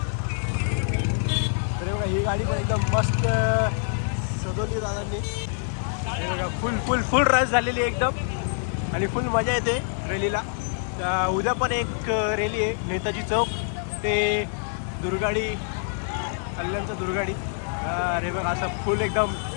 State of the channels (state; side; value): silent; right; 57 dB below the other